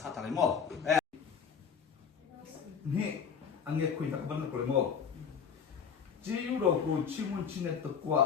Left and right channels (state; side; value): quieter; right; 6.8 dB